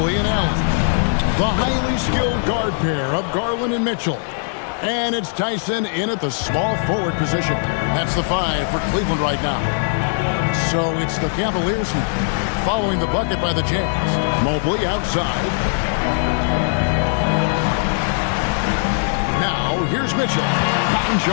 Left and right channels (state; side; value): silent; right; digital silence